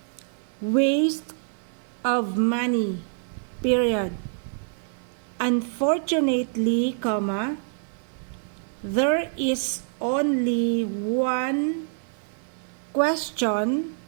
waste of money. Period. Unfortunately, there is only one question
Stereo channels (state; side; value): silent; left; 61 dB below the other